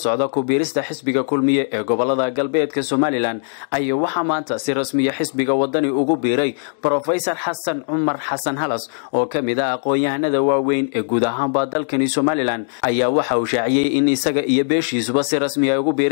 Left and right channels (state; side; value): silent; right; digital silence